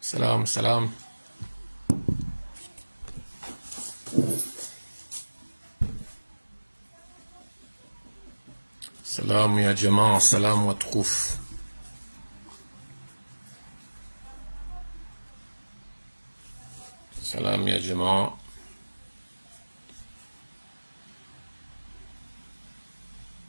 سلام سلام. سلام يا جماعة. سلام متكوف. سلام يا جماعة.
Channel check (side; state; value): both; inverted; correlation -1.00